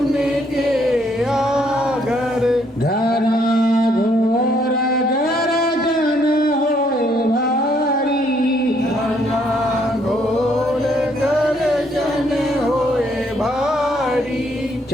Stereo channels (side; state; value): both; normal; correlation 0.69